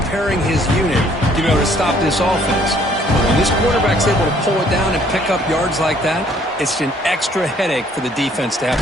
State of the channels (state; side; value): normal; both; correlation 0.61